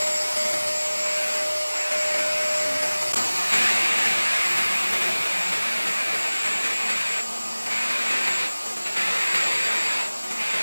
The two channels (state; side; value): inverted; both; correlation -1.00